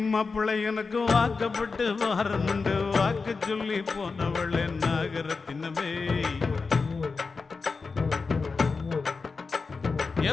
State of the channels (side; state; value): right; quieter; 4.5 dB